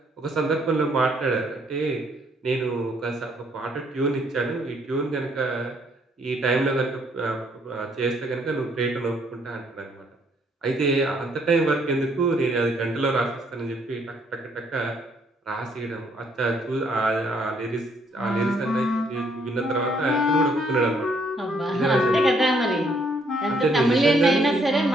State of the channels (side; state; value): both; normal; correlation 0.68